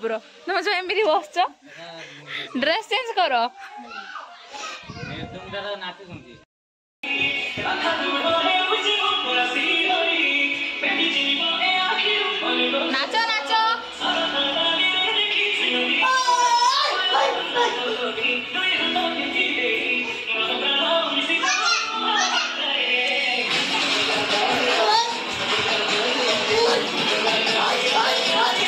तुम जो एमती बसच ड्रेस चेंज कर नाच नाच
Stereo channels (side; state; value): both; identical; correlation 1.00